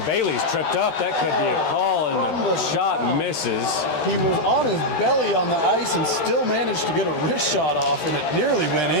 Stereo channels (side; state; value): right; late; 13 ms